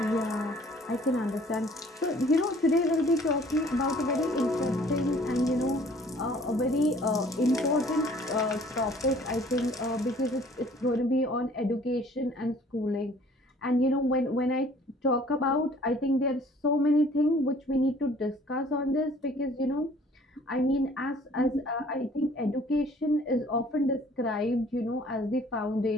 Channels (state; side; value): normal; both; correlation 0.55